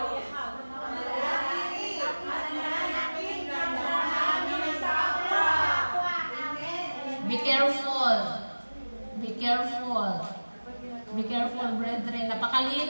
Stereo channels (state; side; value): inverted; both; correlation -1.00